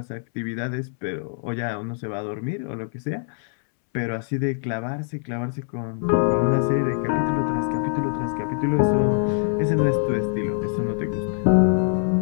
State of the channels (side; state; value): right; silent; 63 dB below the other